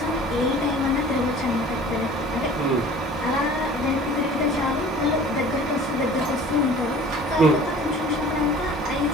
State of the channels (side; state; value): both; normal; correlation 0.46